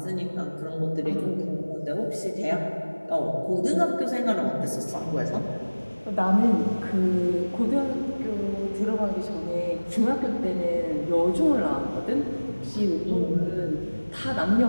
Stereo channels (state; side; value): inverted; both; correlation -1.00